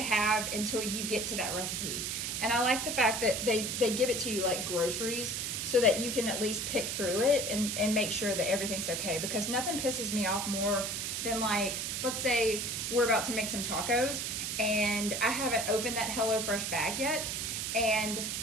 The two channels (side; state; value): right; noise; hiss, 2 dB below the sound